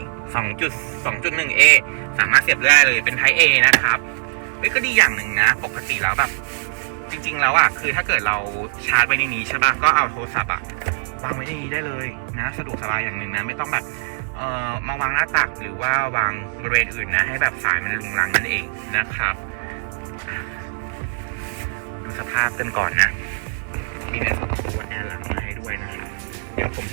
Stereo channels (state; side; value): silent; left; 65 dB below the other